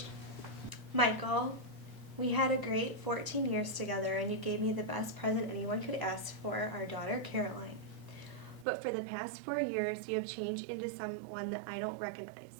Michael, we had a great 14 years together, and you gave me the best present anyone could ask for, our daughter Caroline. But for the past 4 years, you have changed into someone that I don't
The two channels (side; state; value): left; drops out; at 8.7 s